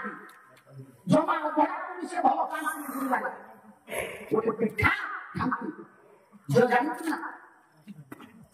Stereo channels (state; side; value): identical; both; correlation 1.00